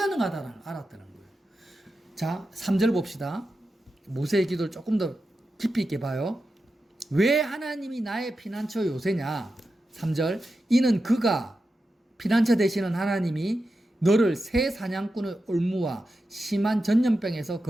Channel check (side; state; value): both; normal; correlation 0.90